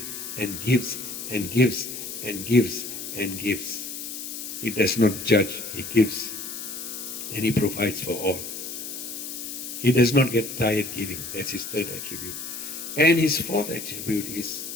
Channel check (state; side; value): noise; left; hiss, 8 dB below the sound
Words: and gives and gives and gives and gives. He does not judge, He gives and He provides for all. He does not get tired giving. That's His third attribute. And His fourth attribute is,